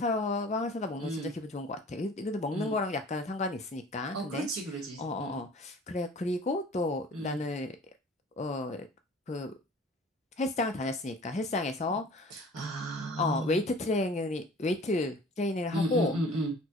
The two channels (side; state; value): both; normal; correlation 0.46